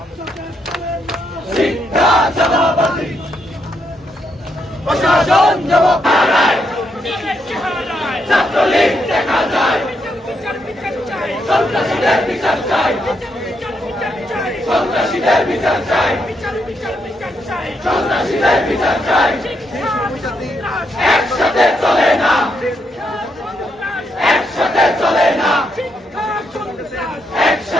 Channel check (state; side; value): normal; both; correlation 0.79